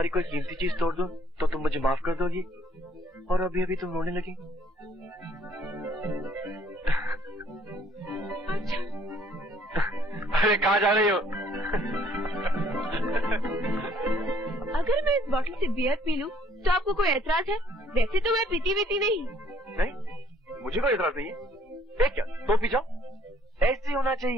कोई कीमती चीज तोड़ दूं तो तुम मुझे माफ कर दोगी, और अभी अभी तुम रोने लगी। अच्छा। अरे कहाँ जा रही हो? अगर मैं इस बोतल से बियर पी लूं तो आपको कोई एतराज है? वैसे तो मैं पीती नहीं। नहीं? मुझे कोई एतराज नहीं है। एक क्या तो पी जाओ, ऐसे होना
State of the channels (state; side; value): normal; both; correlation 0.62